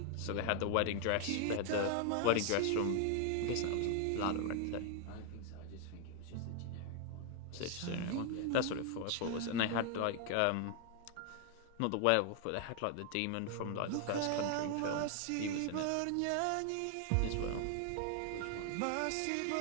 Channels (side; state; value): both; different; correlation 0.00